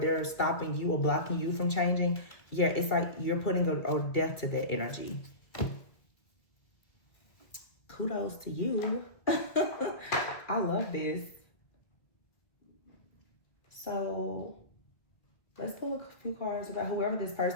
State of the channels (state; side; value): late; right; 2.2 ms